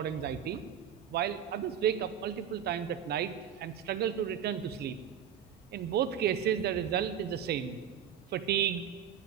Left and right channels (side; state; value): left; quieter; 8.8 dB